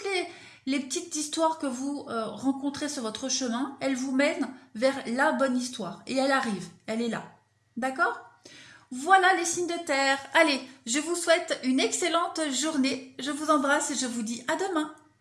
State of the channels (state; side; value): identical; both; correlation 1.00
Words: les petites histoires que vous rencontrez sur votre chemin, elles vous mènent vers la bonne histoire. Et elle arrive, elle est là. D'accord ? Voilà les signes de terre. Allez, je vous souhaite une excellente journée. Je vous embrasse et je vous dis à demain.